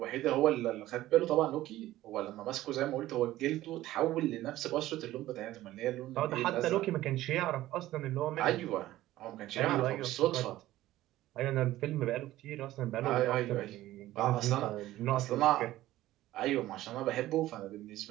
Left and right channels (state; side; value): quieter; left; 15.4 dB